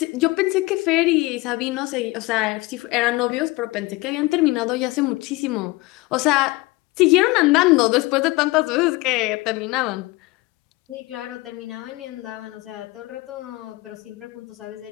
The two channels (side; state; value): right; quieter; 21.7 dB